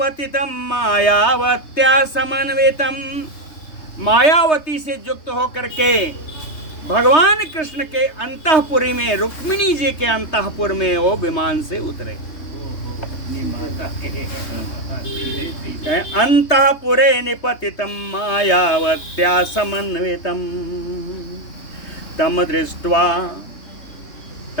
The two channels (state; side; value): late; right; 3.2 ms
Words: मायावत्या समन्वितम, मायावती से युक्त होकर के भगवान कृष्ण के अंतःपुरी में, रुक्मिणी जी के अंतःपुर में वो विमान से उतरे। अंतःपुरे निपतितम मायावत्या समन्वितम तम